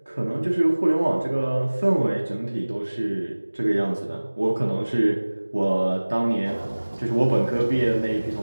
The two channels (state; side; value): inverted; both; correlation -1.00